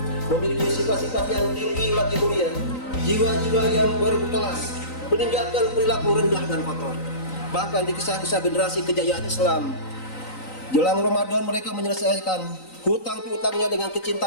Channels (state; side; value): late; right; 3.9 ms